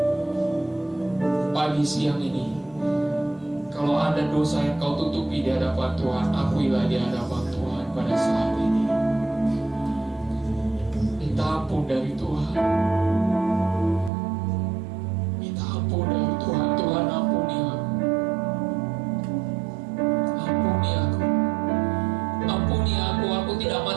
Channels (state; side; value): drops out; left; at 14.1 s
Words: Pagi siang ini, kalau ada dosa yang kau tutupi di hadapan Tuhan, akuilah di hadapan Tuhan pada saat ini. Minta ampun dari Tuhan. Minta ampun dari Tuhan. Tuhan, ampuni aku. Ampuni aku. Ampuni aku. Aku tidak